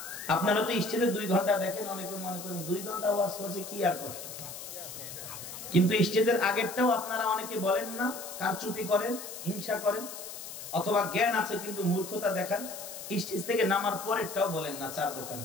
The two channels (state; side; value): noise; left; hiss, 10 dB below the sound